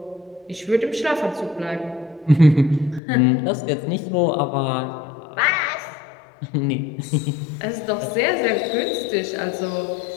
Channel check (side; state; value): right; drops out; at 3.0 s